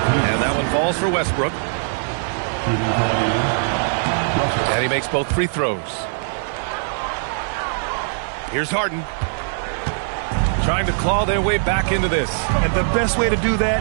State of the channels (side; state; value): left; silent; 55 dB below the other